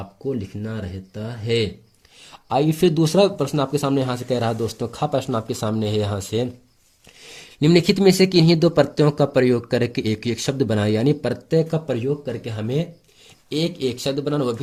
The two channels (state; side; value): identical; both; correlation 1.00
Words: लिखना रहता है। आइए फिर दूसरा प्रश्न आपके सामने यहाँ से कह रहा है। दोस्तों प्रश्न आपके सामने है यहाँ से, निम्नलिखित में से किन्हीं दो प्रत्ययों का प्रयोग करके एक एक शब्द बनाए। यानी प्रत्यय का प्रयोग करके हमें एक एक शब्द बनाना, वो